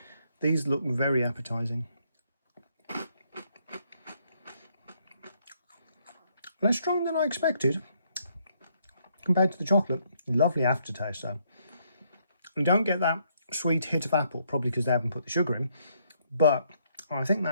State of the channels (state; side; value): inverted; both; correlation -0.72